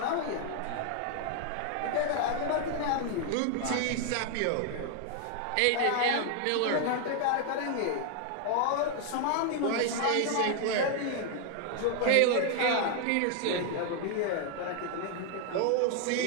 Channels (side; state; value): both; different; correlation 0.00